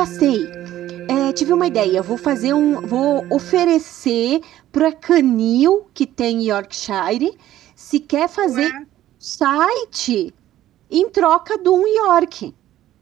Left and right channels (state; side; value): quieter; left; 13.4 dB